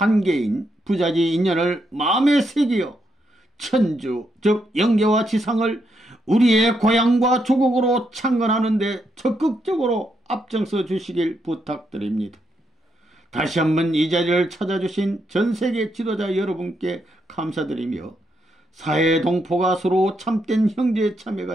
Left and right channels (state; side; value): normal; both; correlation 0.79